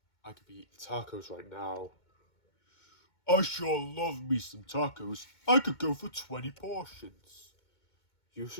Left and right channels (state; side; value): late; right; 2.2 ms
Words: I could be eating tacos right now. I sure love me some tacos. I could go for 20 portions. You